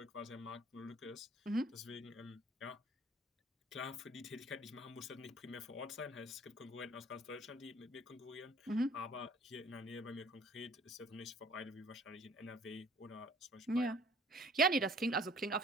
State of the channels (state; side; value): normal; both; correlation 0.54